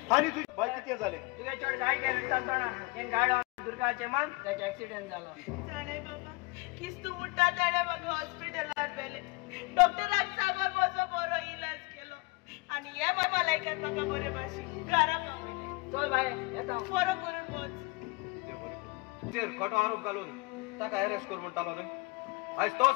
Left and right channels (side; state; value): right; quieter; 25.8 dB